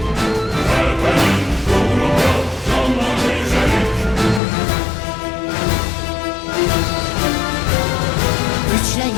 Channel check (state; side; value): drops out; right; at 4.4 s